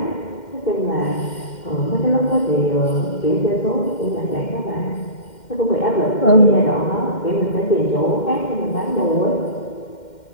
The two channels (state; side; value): late; right; 2.1 ms